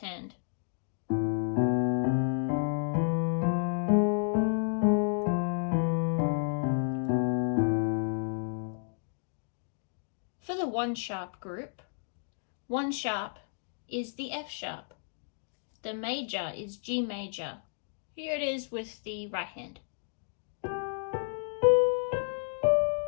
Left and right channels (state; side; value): silent; right; digital silence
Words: For the 1 sharp group, 1 sharp is the F sharp. The major is G major. Here it is with the right hand.